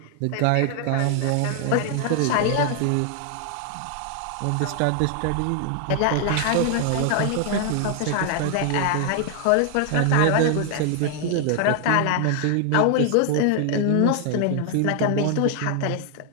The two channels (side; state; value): both; different; correlation 0.00